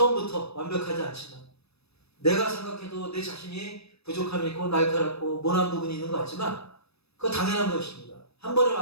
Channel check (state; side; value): late; right; 0.78 ms